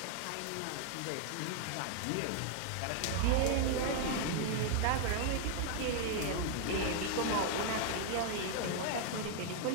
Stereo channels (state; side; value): different; both; correlation 0.00